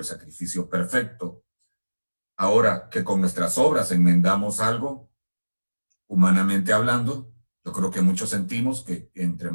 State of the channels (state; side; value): inverted; both; correlation -1.00